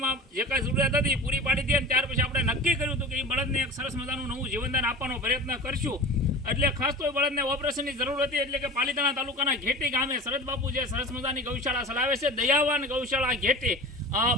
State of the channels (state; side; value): normal; both; correlation 0.35